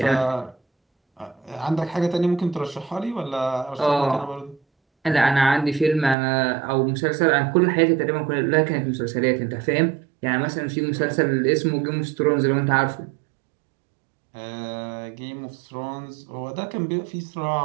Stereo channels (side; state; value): left; drops out; at 6.2 s